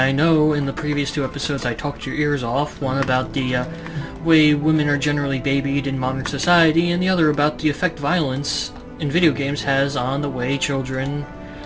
know in the previous two episodes I talked your ears off, one about the way women are generally babied in modern society, and the other about the effect violence in video games has on the way children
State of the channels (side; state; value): both; identical; correlation 1.00